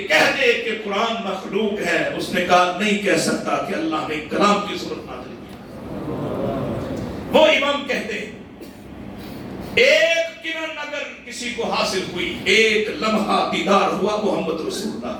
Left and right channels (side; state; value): both; identical; correlation 1.00